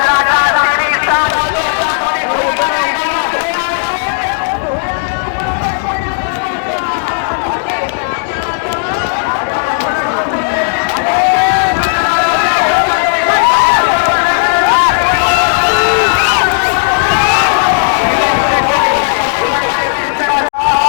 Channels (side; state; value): right; silent; digital silence